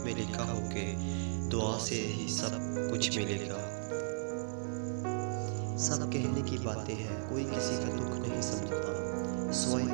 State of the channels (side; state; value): left; silent; digital silence